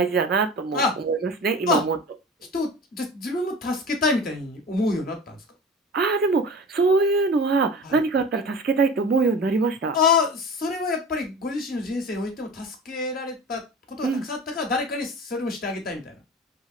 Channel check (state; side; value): normal; both; correlation 0.36